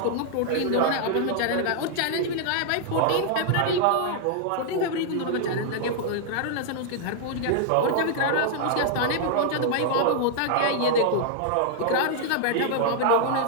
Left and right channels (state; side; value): different; both; correlation -0.01